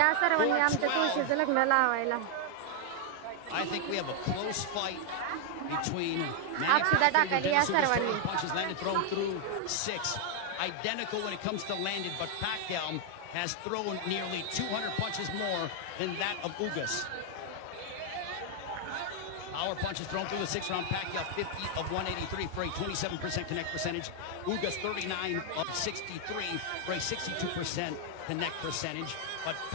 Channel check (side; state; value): both; different; correlation 0.00